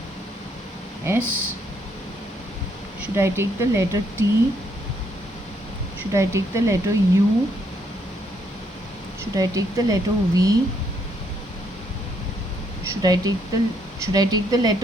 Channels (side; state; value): both; normal; correlation 0.72